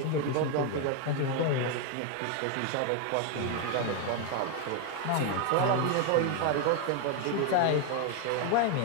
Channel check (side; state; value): both; different; correlation 0.01